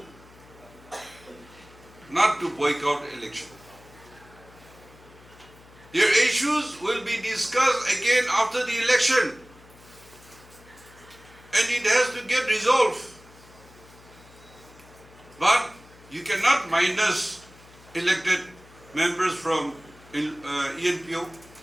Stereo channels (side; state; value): left; noise; hum, 24 dB below the sound